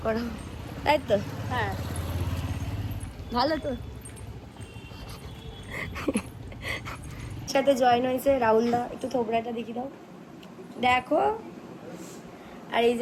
করা, তাই তো? হ্যাঁ, ভালো তো। সাথে জয়েন হয়েছে রাহুলদা, একটু থোবড়াটা দেখি দাও, দেখো। আর এই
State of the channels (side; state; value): both; identical; correlation 1.00